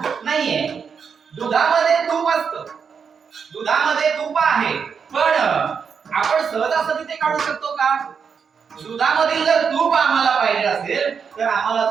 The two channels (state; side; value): quieter; left; 6.4 dB